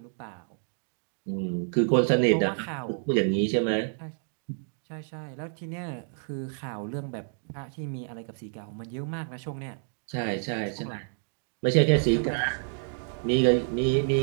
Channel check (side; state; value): left; silent; 59 dB below the other